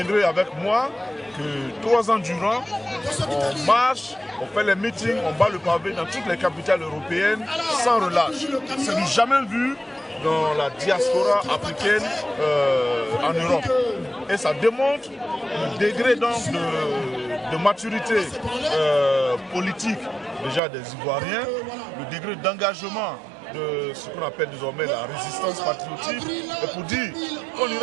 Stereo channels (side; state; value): left; drops out; at 20.6 s